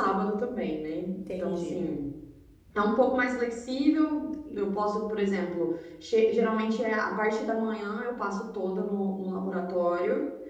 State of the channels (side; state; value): both; identical; correlation 1.00